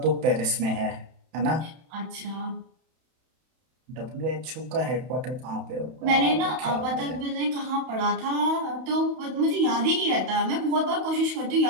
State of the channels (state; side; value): late; left; 31 ms